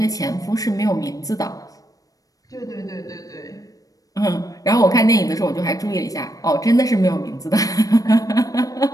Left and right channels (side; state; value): right; late; 0.17 ms